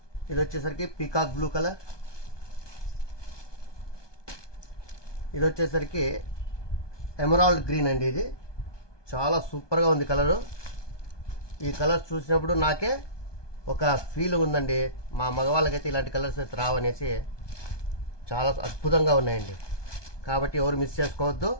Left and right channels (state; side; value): late; right; 1.2 ms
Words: ఇది వచ్చేసరికి పీకాక్ బ్లూ కలర్. ఇది వచ్చేసరికి ఎమరాల్డ్ గ్రీన్ అండి. ఇది చాలా సూపర్గా ఉంది కలరు. ఈ కలర్స్ చూసినప్పుడు నాకే ఒక ఫీల్ ఉందండి, మా మగవాళ్ళకైతే ఇలాంటి కలర్స్ అయితే రావనేసి. చాలా అద్భుతంగా ఉన్నాయండి. కాబట్టి ఎవరు మిస్ చేసుకోవద్దు.